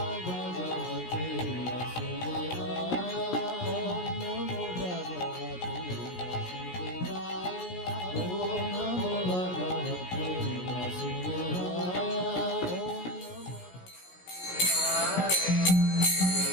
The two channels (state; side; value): late; right; 17 ms